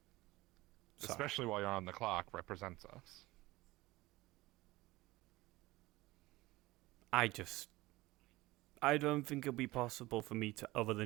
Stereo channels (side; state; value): left; quieter; 19.4 dB